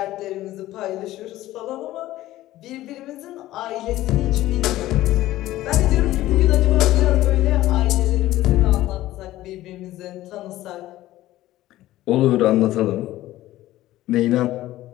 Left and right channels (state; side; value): quieter; right; 15.5 dB